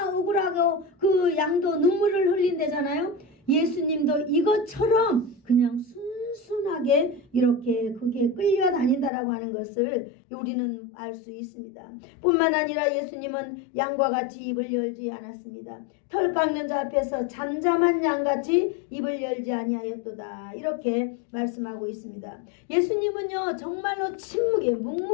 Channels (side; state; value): right; drops out; at 9.1 s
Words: 억울하고 그 양도 눈물을 흘린대잖아요. 예수님도 이것처럼 그냥 순순하게 이렇게 그게 끌려다닌다라고 하는 것을 우리는 알 수 있습니다. 뿐만 아니라 예수님은 양과 같이 입을 열지 않았습니다. 털 깎는 자 앞에서 잠잠한 양같이 입을 열지 아니하였도다. 이렇게 말씀하고 있습니다. 예수님은요 정말로 침묵히